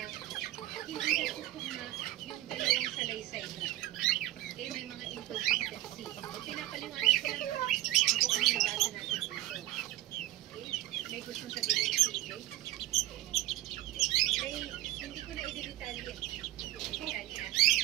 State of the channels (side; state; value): left; quieter; 16.0 dB